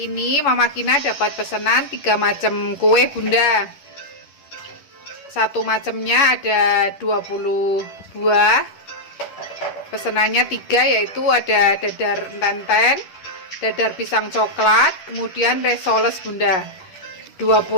ini Mama Kina dapat pesanan 3 macam kue Bunda. Satu macamnya ada 20 buah. Pesanannya 3, yaitu ada dadar enten, dadar pisang coklat, kemudian resoles Bunda.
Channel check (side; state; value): right; late; 10 ms